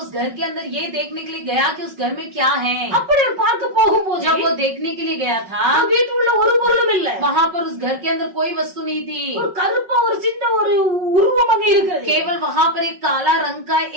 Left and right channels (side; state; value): left; late; 5.4 ms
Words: उस घर के अंदर ये देखने के लिए गया कि उस घर में क्या है. அப்படி அவர் பார்க்க போகும்போது जब वो देखने के लिए गया था, வீட்டுக்குள்ள ஒரு பொருளும் இல்ல. वहाँ पर उस घर के अंदर कोई वस्तु नहीं थी. ஒரு கருப்பா ஒரு சின்ன ஒரு உருவம் அங்க இருக்கிறது. केवल वहाँ पर एक काला रंग का